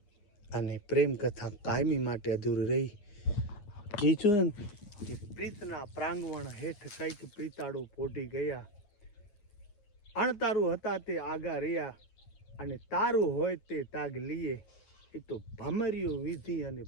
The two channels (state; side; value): late; right; 9.4 ms